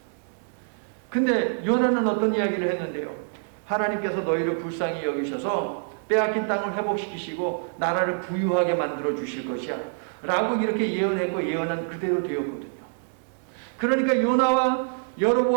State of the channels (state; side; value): silent; left; digital silence